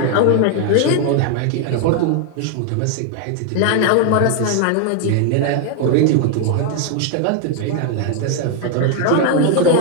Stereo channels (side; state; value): both; different; correlation 0.01